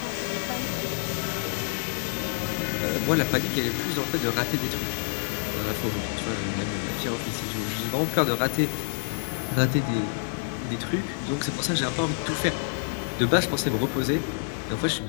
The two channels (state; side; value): silent; right; 60 dB below the other